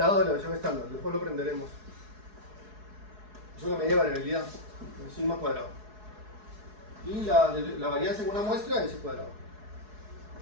de la desviación estándar. Después lo aprenderemos. Es una medida de variabilidad. El sigma cuadrado. Y la varianza en una muestra es el cuadrado.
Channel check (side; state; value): left; late; 4.7 ms